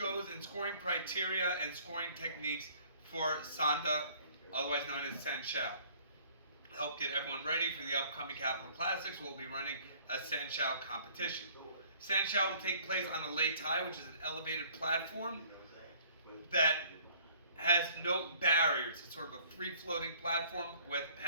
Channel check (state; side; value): inverted; both; correlation -0.56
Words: and scoring criteria and scoring techniques for Sanda, otherwise known as Sanshao. Help get everyone ready for the upcoming Capital Classics. We'll be running a Sanshao competition. Sanshao will take place on the Lei Tai, which is an elevated platform that has no barriers. It's sort of a free-floating platform with